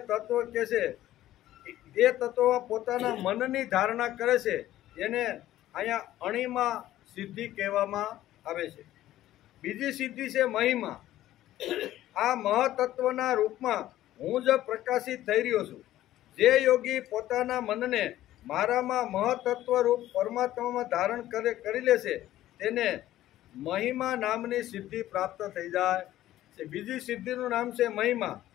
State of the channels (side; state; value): right; quieter; 14.0 dB